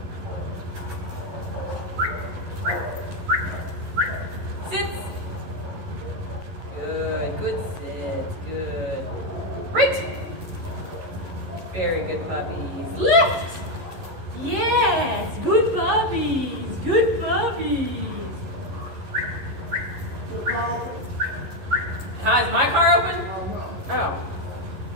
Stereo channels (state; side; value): late; left; 11 ms